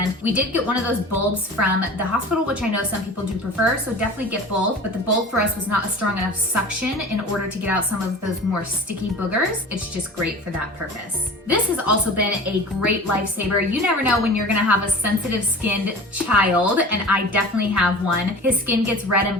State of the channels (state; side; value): normal; both; correlation 0.38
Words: We did get one of those bulbs from the hospital, which I know some people do prefer, so definitely get both, but the bulb for us was not a strong enough suction in order to get out some of those more sticky boogers. It's just great for that purpose. This has also been a great lifesaver. You never know when you're gonna have a sensitive skinned child, and I definitely have one. His skin gets red and